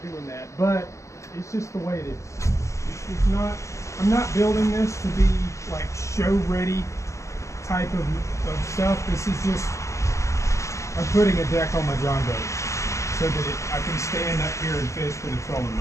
doing that, but it's just the way it is. It's not, I'm not building this to be like show ready type of stuff. This is just, I'm putting a deck on my John boat so that I can stand up here and fish with a trolling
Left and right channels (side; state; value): right; late; 0.15 ms